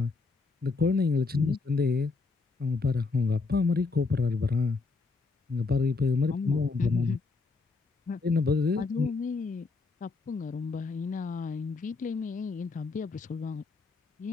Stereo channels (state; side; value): quieter; right; 4.0 dB